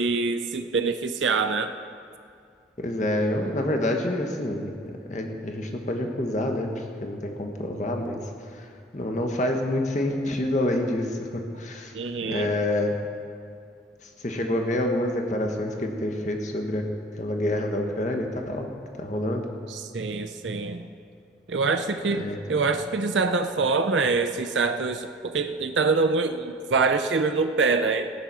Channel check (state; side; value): normal; both; correlation 0.40